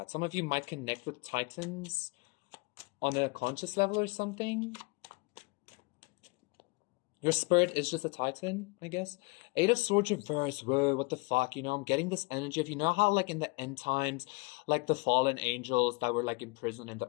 Some of you might connect with titans on a conscious level or something. Your spirit is just a titan, I guess. Eight of Swords reverse. Whoa, what the fuck? You know, I'm getting this energy of, you know how like in the end times, like the fallen angels that were like imprisoned in the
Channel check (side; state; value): right; quieter; 28.4 dB